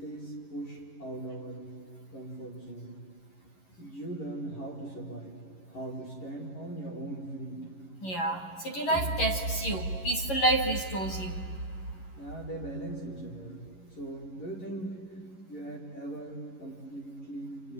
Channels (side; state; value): right; late; 11 ms